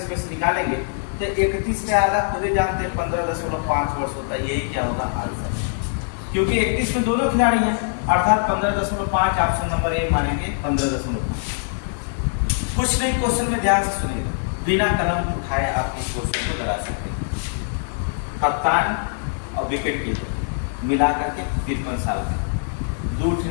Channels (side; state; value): right; silent; digital silence